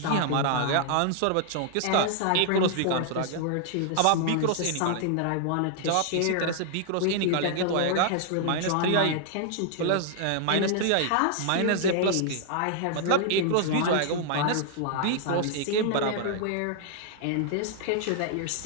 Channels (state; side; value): different; both; correlation 0.00